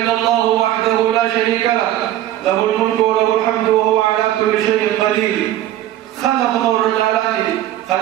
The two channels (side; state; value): left; quieter; 13.2 dB